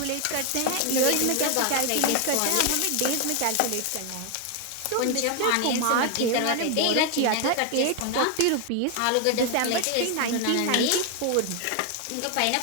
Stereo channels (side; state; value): both; different; correlation 0.01